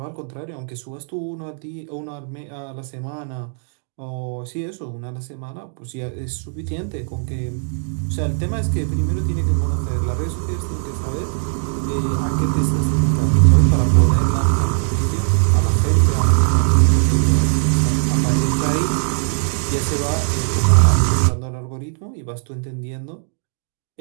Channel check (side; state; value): left; silent; 66 dB below the other